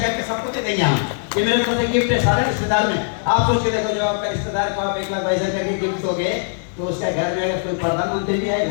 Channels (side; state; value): right; silent; digital silence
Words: करके सबको दे देंगे हम। ये मेरे तरफ से गिफ्ट है सारे रिश्तेदार में। आप सोच के देखो, जो आपका रिश्तेदार को आप 1 लाख भाई सर करके गिफ्ट दोगे तो उसका घर में अगर कोई प्रधानमंत्री भी